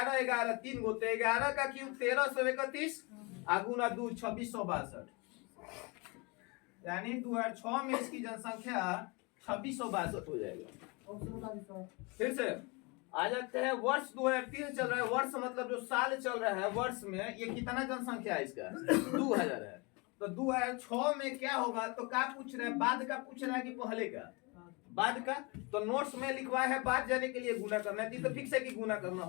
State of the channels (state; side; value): quieter; right; 28.6 dB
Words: 11 3 गो, तो 11 का क्यूब 1331 गुना 2 2662, यानी 2006 में इसकी जनसंख्या 2662 हो जाएगा। फिर से आ जाते हैं, वर्ष 2003 चल रहा है। वर्ष मतलब जो साल चल रहा है, वर्ष में ये कितना जनसंख्या है इसका? 2000 है। तो 2006 में क्या होगा, तो क्या पूछ रहा है, बाद का पूछ रहा है कि पहले का, बाद का। तो नोट्स में लिखवा है बाद जाने के लिए गुना करना है, तो फिक्स है कि गुना करना